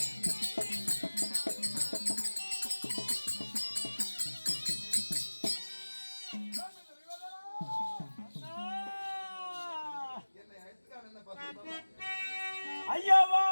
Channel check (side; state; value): both; inverted; correlation -1.00